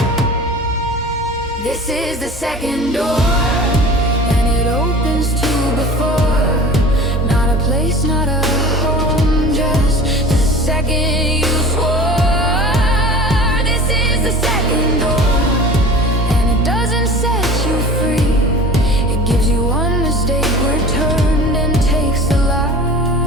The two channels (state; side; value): normal; both; correlation 0.39